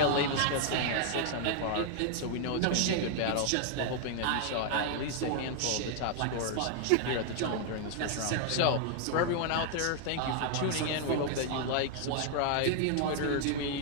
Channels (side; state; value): both; different; correlation 0.00